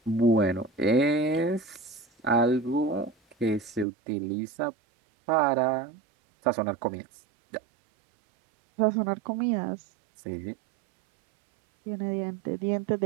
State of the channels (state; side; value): drops out; left; at 3.9 s